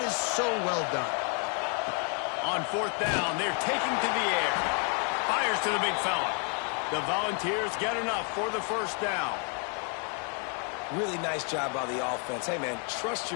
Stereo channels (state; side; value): quieter; right; 39.5 dB